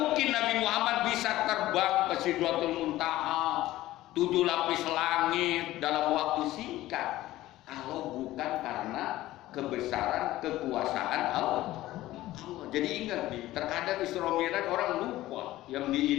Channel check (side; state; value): right; quieter; 16.0 dB